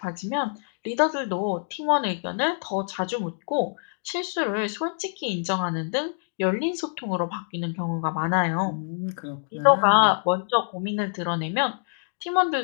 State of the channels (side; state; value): right; silent; digital silence